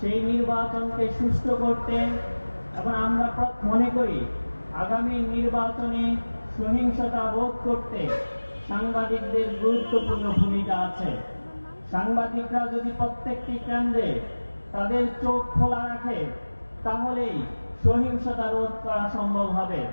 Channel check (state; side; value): inverted; both; correlation -1.00